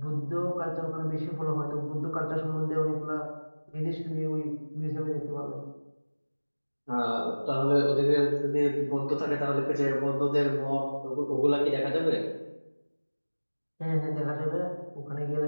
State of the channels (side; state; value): both; inverted; correlation -1.00